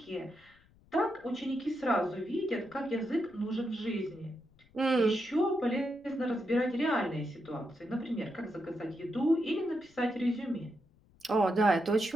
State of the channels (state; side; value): noise; left; rumble, 30 dB below the sound